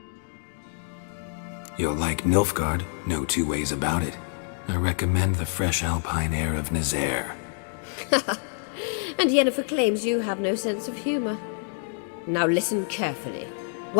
You'll like Nilfgaard, no two ways about it. I recommend the fresh alpine air of Nazaire. And Yennefer claims you have no sense of humor. Now listen carefully.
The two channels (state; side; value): silent; right; 60 dB below the other